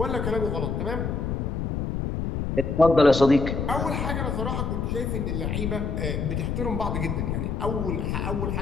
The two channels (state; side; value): noise; left; rumble, 1 dB below the sound